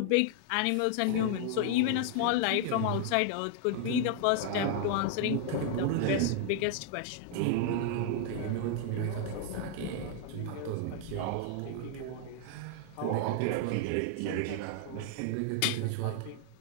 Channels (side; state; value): both; different; correlation 0.00